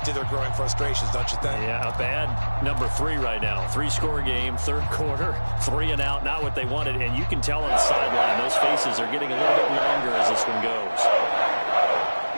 to their growing frustrations, don't you think? Yeah, a bad number 3 right now. 3-score game, 3rd quarter, 3 and out, not what they wanted. And you can tell on the sideline, those faces are getting a little bit longer as this one goes.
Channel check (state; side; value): inverted; both; correlation -1.00